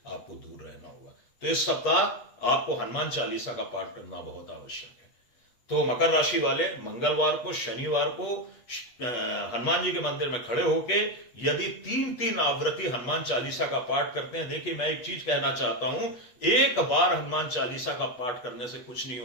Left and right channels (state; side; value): late; right; 8.3 ms